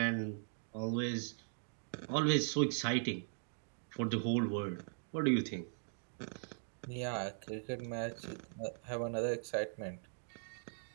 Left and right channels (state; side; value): silent; left; digital silence